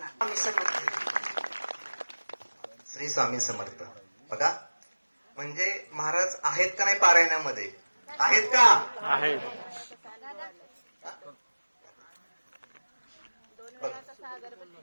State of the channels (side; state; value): both; inverted; correlation -1.00